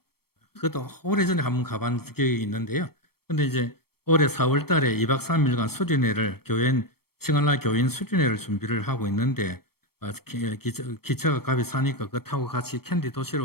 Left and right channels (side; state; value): right; late; 0.95 ms